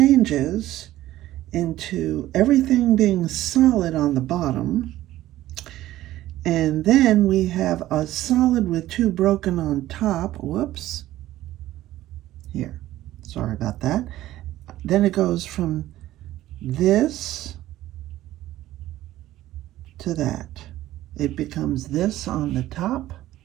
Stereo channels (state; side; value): quieter; left; 14.8 dB